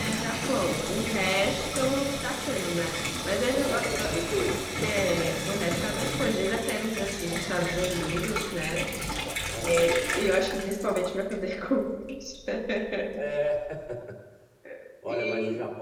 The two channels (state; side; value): identical; both; correlation 1.00